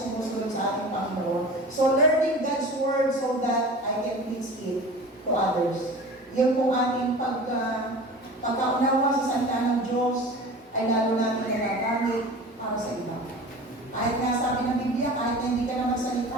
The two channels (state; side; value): normal; both; correlation 0.37